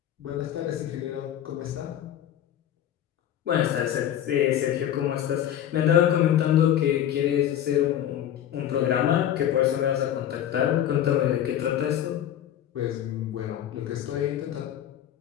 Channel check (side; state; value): right; quieter; 10.9 dB